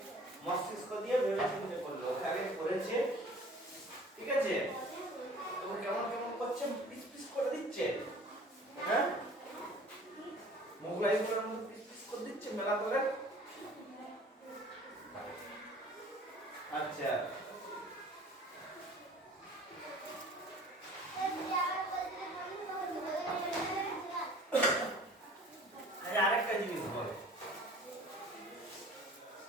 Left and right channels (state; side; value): normal; both; correlation 0.48